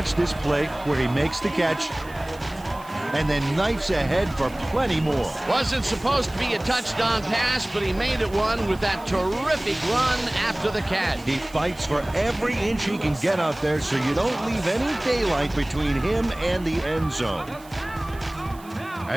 this play where he makes the catch and then knifes ahead for plenty more. Wasn't supposed to be a touchdown pass, but he made it one with that terrific run after the catch. He fights for every inch he can get out there so you don't leave any daylight between him and the end zone.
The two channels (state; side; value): noise; right; hiss, 23 dB below the sound